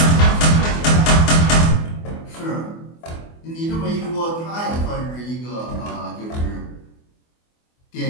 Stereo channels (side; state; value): right; late; 24 ms